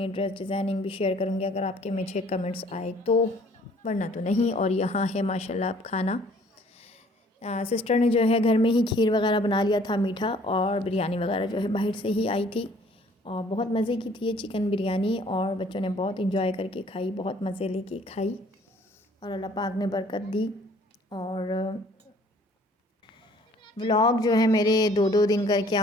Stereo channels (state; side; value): normal; both; correlation 0.57